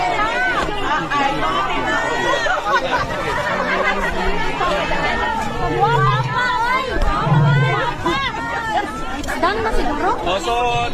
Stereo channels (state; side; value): identical; both; correlation 1.00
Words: Done na siguro? So,